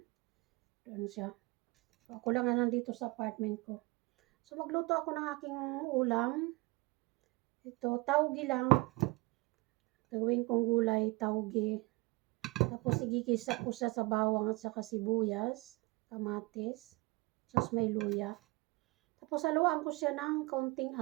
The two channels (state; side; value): quieter; left; 24.2 dB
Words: Doon siya. So ako lang na nandito sa apartment ko. So magluto ako ng aking ulam. Ito, taugi lang. Gawin kong gulay, taugi. Tapos igigisa ko siya sa bawang at saka sibuyas, kamatis, tapos may luya. Tapos haluan ko siya ng kaunting